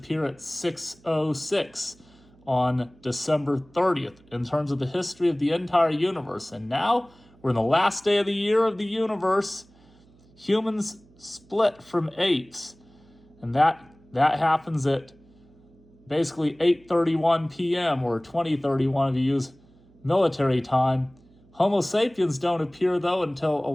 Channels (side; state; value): right; noise; hum, 29 dB below the sound